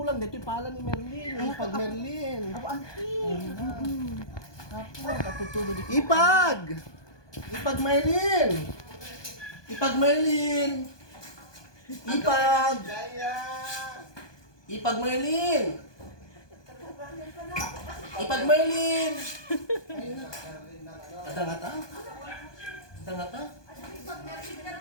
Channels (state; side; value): late; right; 1.2 ms